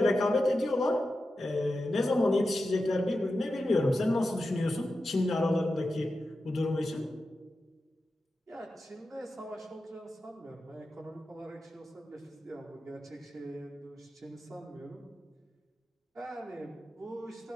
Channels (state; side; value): normal; both; correlation 0.91